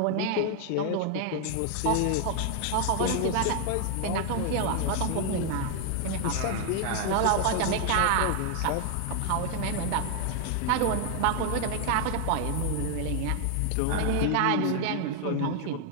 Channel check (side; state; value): both; different; correlation 0.00